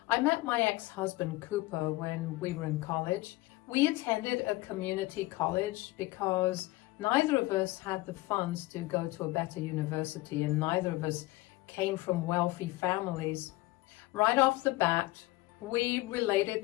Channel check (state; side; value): quieter; right; 19.7 dB